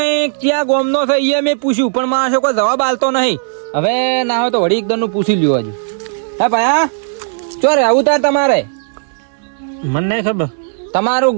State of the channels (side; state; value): left; silent; 66 dB below the other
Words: ક્યાં ગોમનો છે એ મેં પૂછ્યું પણ મારો કોઈ જવાબ આલતો નહીં. હવે ના હોય તો વળી એકદમ નું પૂછી લ્યો હજુ. હે ભાઈ હા ચો રે આવું તાર તમારે? મને નહીં ખબર.